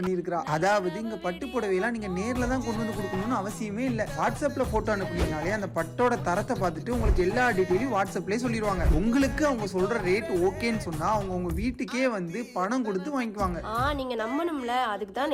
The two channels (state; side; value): identical; both; correlation 1.00